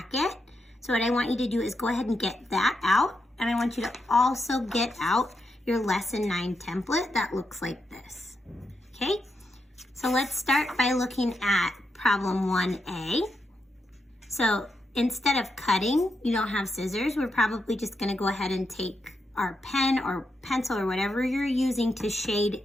So what I want you to do is go ahead and get that out. And I want you to also get out your Lesson 9 template that looks like this. Okay, so let's start by looking at problem 1A. So instead of cutting, you don't have scissors, we're probably just gonna go ahead and take our pen or pencil or whatever you're using to shade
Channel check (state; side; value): normal; both; correlation 0.84